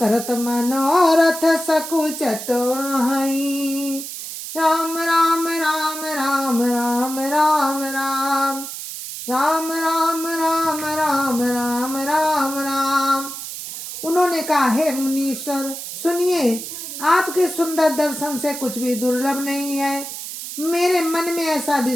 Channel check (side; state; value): right; noise; hiss, 8 dB below the sound